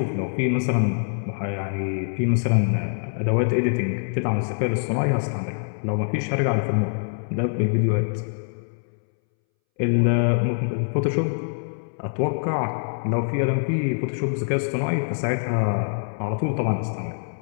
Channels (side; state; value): right; silent; 62 dB below the other